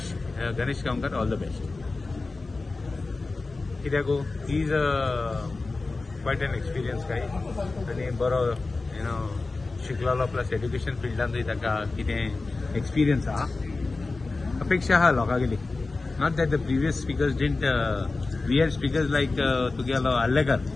Ganesh Gaonkar all the best कित्याक he is quite an experience guy आनी बरो शिकलेलो प्लस एड्युकेशन फिल्डांतूय ताका कितें एक्सपिरियन्स आहा अपेक्षा आहा लोकांगेली not that the previous speakers didn't we had speakers like तुगेलो आल्लेकर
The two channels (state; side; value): quieter; right; 3.6 dB